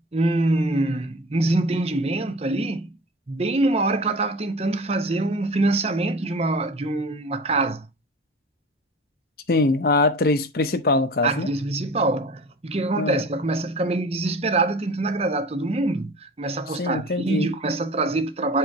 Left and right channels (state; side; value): normal; both; correlation 0.39